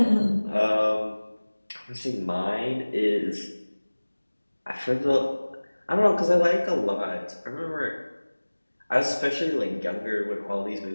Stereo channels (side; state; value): both; inverted; correlation -1.00